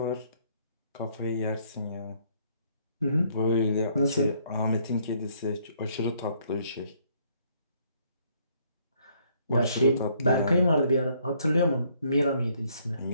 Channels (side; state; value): both; inverted; correlation -0.66